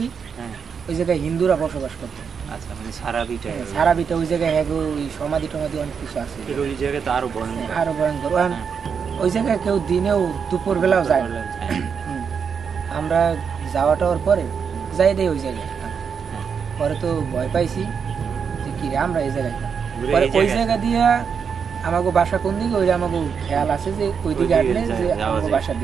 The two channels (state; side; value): quieter; left; 6.6 dB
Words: ওই জায়গায় হিন্দুরা বসবাস করতো। আচ্ছা, মানে সারা বিটা ওই জায়গায় ওই সমাধি টমাধি অনেক কিছু আছে, ওই জায়গায় তো আরো ভয়ঙ্কর। ওই জায়গায় কেউ দিনেও দুপুর বেলাও যায়। আমরা যাওয়া টাওয়ার পরে যাই দেই ওই জায়গায়, পরে তো ভয় পাইছি যে কি রে আমরা এই জায়গায়, পরে ওই জায়গা দিয়া আমাকে বাসা কোন দিকে ওই আমাকে খেয়াল আছে যে ওই দিকে হাঁটলে যে আমাকে বাসার